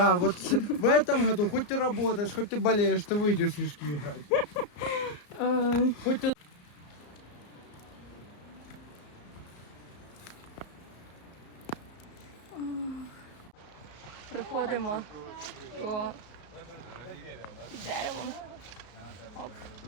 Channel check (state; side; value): late; right; 34 ms